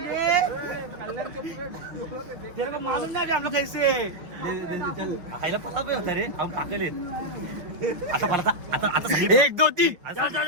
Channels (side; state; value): left; late; 5.9 ms